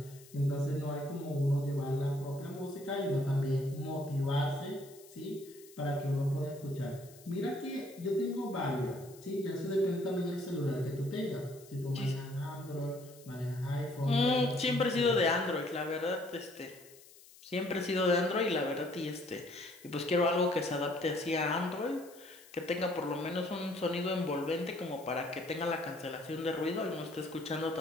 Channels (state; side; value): noise; left; hiss, 22 dB below the sound